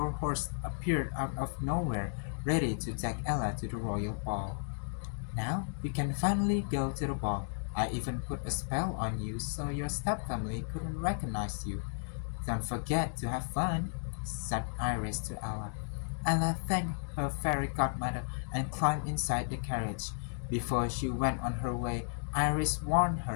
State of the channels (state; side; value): silent; right; digital silence